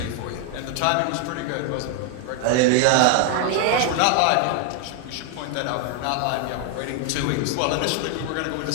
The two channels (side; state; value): both; different; correlation 0.00